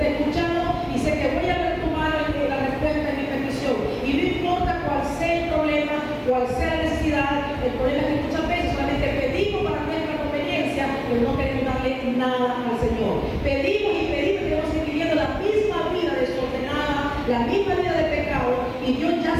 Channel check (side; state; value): both; identical; correlation 1.00